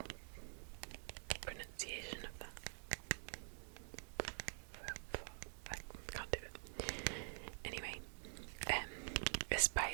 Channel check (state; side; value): silent; left; digital silence